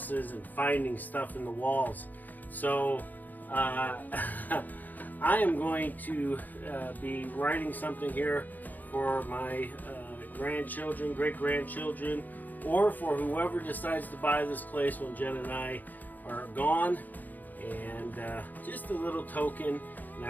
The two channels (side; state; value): right; late; 0.084 ms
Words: and finding stuff in the walls. So I am going to be writing something here for my grandchildren, great-grandchildren, or for whoever decides to buy this place when Jen and I are gone. And just a little token. And I